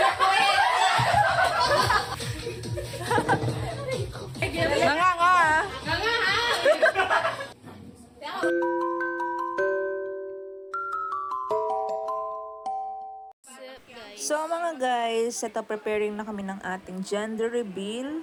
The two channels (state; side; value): identical; both; correlation 1.00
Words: Nanganga ah. So mga guys, ito preparing na kami ng ating gender